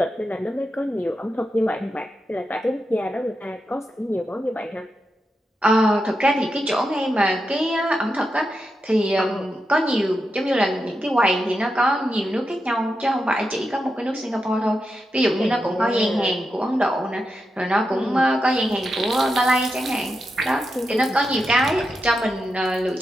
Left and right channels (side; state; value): both; normal; correlation 0.87